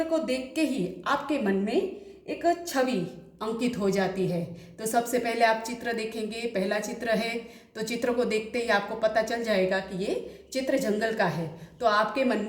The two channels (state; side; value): identical; both; correlation 1.00